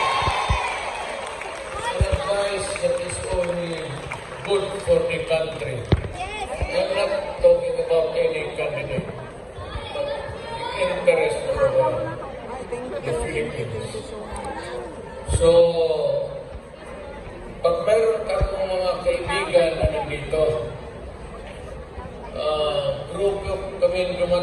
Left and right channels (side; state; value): both; identical; correlation 1.00